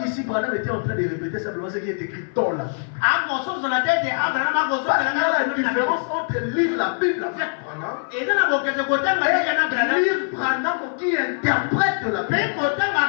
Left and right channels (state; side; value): silent; right; 59 dB below the other